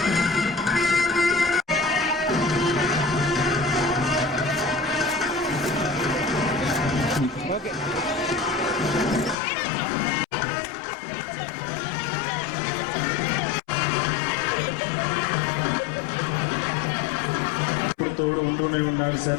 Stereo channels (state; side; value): drops out; right; at 9.3 s